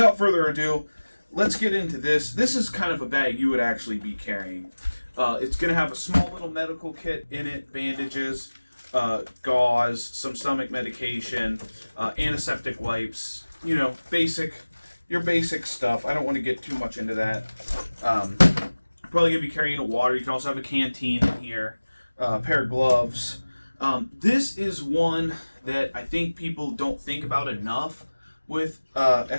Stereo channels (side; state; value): both; inverted; correlation -1.00